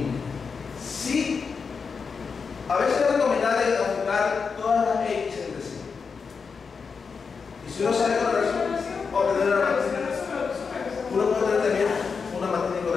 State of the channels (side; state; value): right; quieter; 5.4 dB